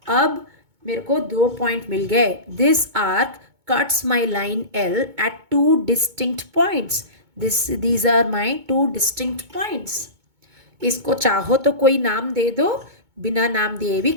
अब मेरे को 2 पॉइंट मिल गए। This arc cuts my line L at 2 distinct points. These are my 2 distinct points. इसको चाहो तो कोई नाम दे दो, बिना नाम दिए भी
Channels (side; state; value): left; late; 2.2 ms